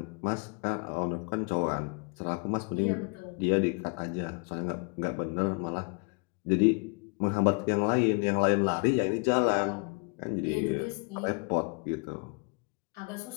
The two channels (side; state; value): right; quieter; 36.2 dB